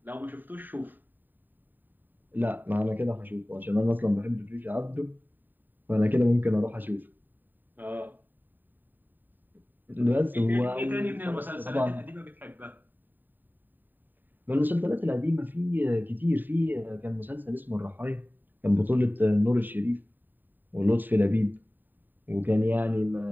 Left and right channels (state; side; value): late; left; 0.090 ms